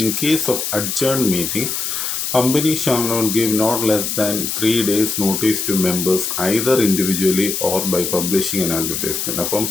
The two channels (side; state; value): left; noise; hiss, 2 dB below the sound